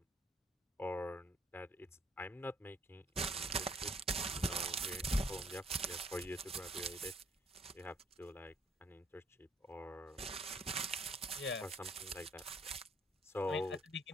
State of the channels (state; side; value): normal; both; correlation 0.63